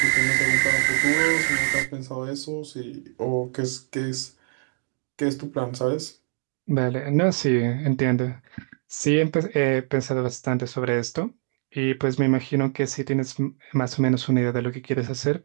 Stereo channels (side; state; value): left; silent; 60 dB below the other